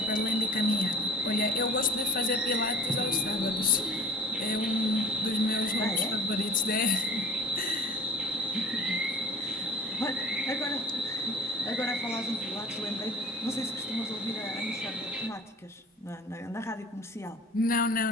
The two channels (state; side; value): normal; both; correlation 0.44